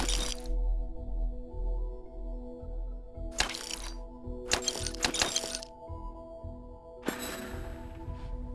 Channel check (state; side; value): identical; both; correlation 1.00